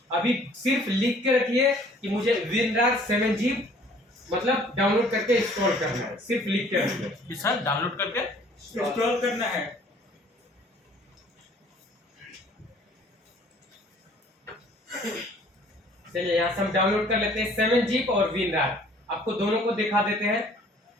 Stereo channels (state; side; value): normal; both; correlation 0.55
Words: अभी सिर्फ लिख के रखिए कि मुझे विनरार 7G मतलब डाउनलोड करके इंस्टॉल करना है, सिर्फ लिख के रखिए। सर डाउनलोड करके इंस्टॉल करना है। चलिए यहाँ से हम डाउनलोड कर लेते हैं 7G और विनरार, आपको दोनों को दिखा देते हैं।